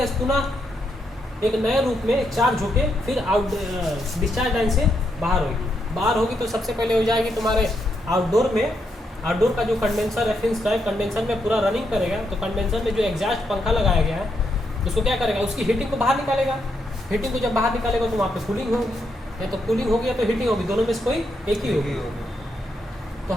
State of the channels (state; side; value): normal; both; correlation 0.80